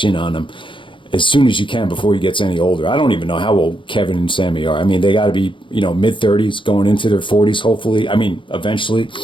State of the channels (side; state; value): right; late; 0.24 ms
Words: in on him as soon as you can before he gets any older. I don't even know how old Kevin and Sami are. I mean, they got to be, mid-30s going into their 40s, hopefully. I mean, eventually.